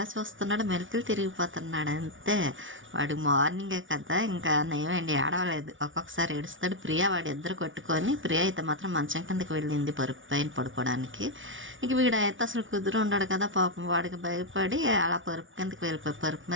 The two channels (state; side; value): late; left; 0.56 ms